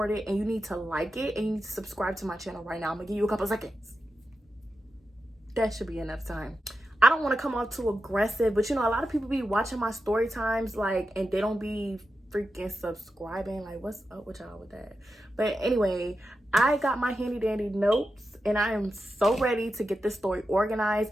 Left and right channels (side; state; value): both; normal; correlation 0.90